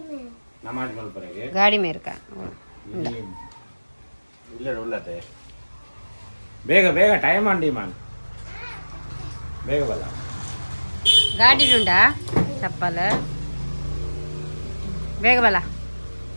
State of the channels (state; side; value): inverted; both; correlation -1.00